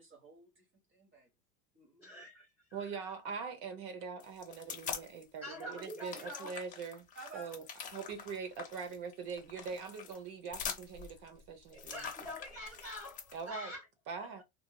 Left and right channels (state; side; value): normal; both; correlation 0.09